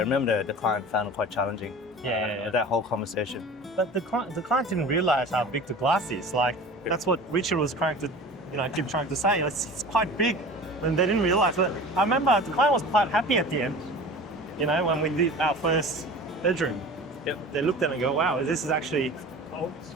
the client found it quite challenging. That whole conversation. But the client didn't realize how big the glass is. Like that's what Richard was trying to, keep trying to say. It's quite big, and they didn't realize. But I remember the client was quite happy at the end. When we did our first bedroom, they looked at it and go, "Wow, this is actually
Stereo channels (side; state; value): both; normal; correlation 0.38